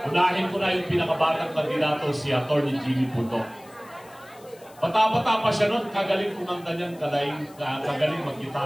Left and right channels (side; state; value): left; noise; hiss, 25 dB below the sound